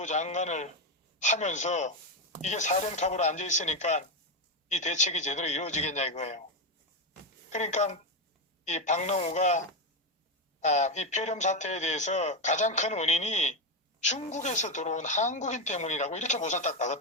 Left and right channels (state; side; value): normal; both; correlation 0.09